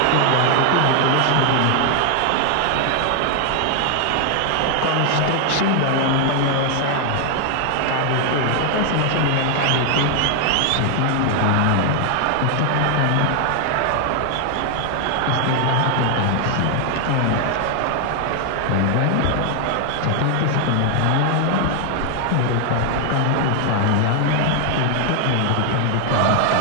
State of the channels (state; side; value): different; both; correlation 0.00